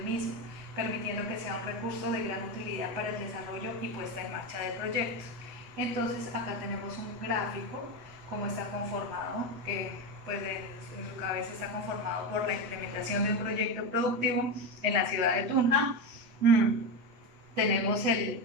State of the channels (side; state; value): left; late; 8.2 ms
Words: mismo, permitiendo que sea un recurso de gran utilidad para el desarrollo y puesta en marcha del proyecto. Entonces, acá tenemos un gráfico, cómo está conformado, que pues en su cabeza está conformado por la implementación de un proyecto productivo en la ciudad de Tunja. Tenemos el